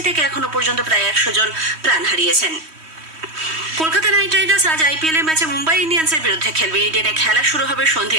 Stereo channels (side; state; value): left; late; 3.1 ms